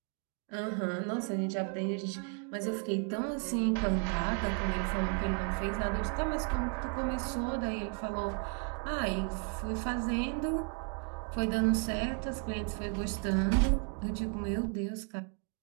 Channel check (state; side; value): quieter; left; 38.8 dB